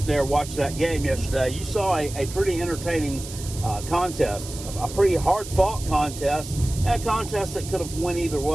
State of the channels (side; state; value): right; noise; hiss, 12 dB below the sound